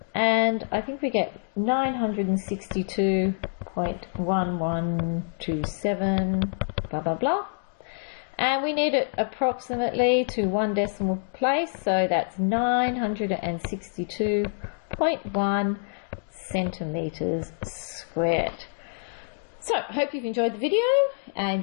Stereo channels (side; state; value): right; silent; digital silence